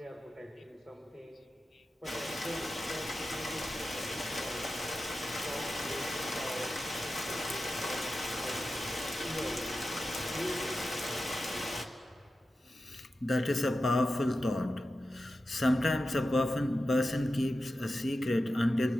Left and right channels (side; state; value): both; normal; correlation 0.92